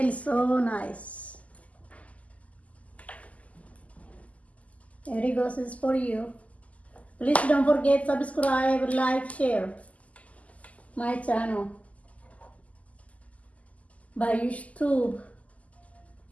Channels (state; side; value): late; right; 0.070 ms